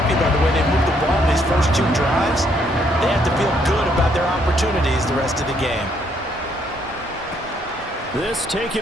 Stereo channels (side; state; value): both; normal; correlation 0.70